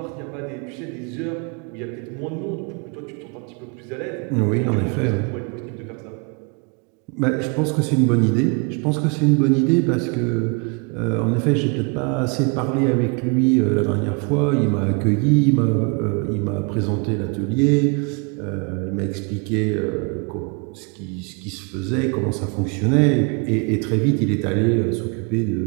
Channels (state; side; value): quieter; left; 33.6 dB